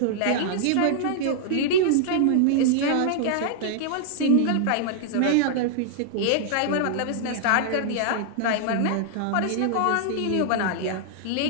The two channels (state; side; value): different; both; correlation -0.01